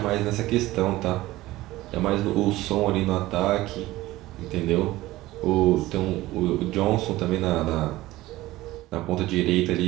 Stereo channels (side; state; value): left; quieter; 17.5 dB